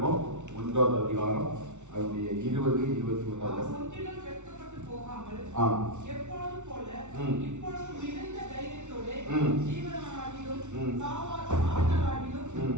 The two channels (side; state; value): left; late; 0.84 ms